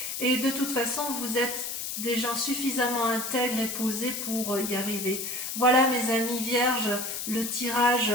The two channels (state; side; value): noise; left; hiss, 4 dB below the sound